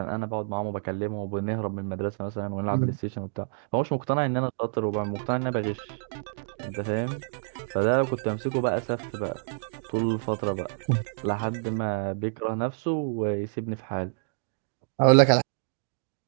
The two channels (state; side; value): silent; left; digital silence